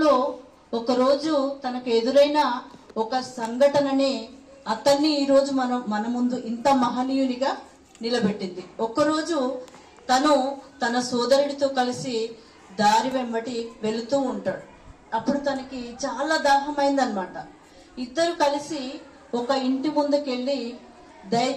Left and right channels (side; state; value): both; identical; correlation 1.00